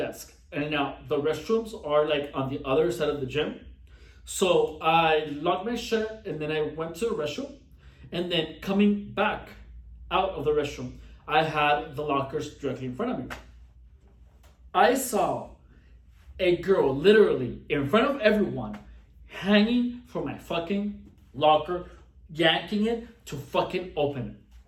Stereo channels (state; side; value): identical; both; correlation 1.00